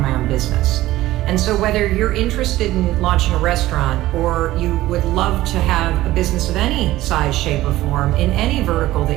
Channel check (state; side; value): quieter; left; 16.1 dB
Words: own business. And so whether you're interested in launching a restaurant or you would love to have a business of any size, shape, or form in any vertical